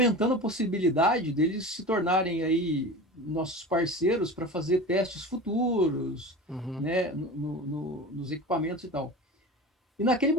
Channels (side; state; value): both; normal; correlation 0.32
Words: a possibilidade deles se tornarem aí nossos parceiros para fazer testes futuros, né, nos equipamentos e tal. E naquele